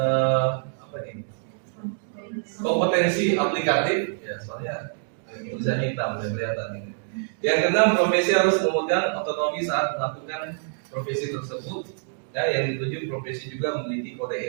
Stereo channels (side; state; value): left; silent; digital silence